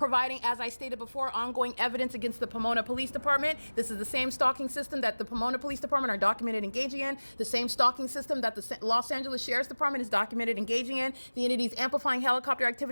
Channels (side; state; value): both; inverted; correlation -1.00